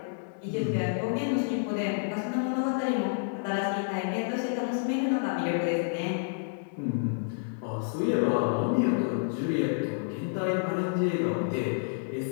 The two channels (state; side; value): silent; right; digital silence